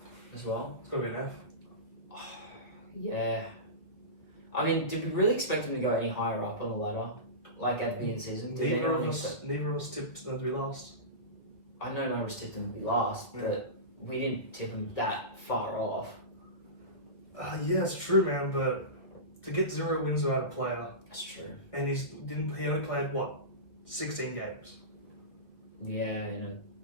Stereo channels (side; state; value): right; late; 1.9 ms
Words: as well. It's got to be an F. Yeah. I mean, did we really expect them to go any higher up on the ladder? Like at the beginning of the season? Neither of us tipped them to be last. I know none of us tipped them to be last, but we didn't tip them that far off. Yeah, it's true, man, but to get 0 wins without a player. That's true. And he only played, 16 games? Yeah, in